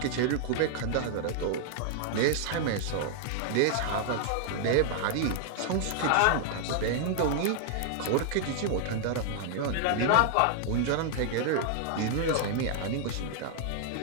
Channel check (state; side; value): different; both; correlation 0.00